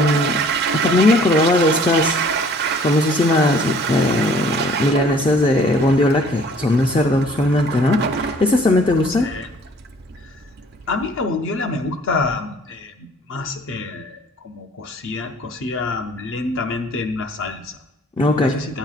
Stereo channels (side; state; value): both; normal; correlation 0.55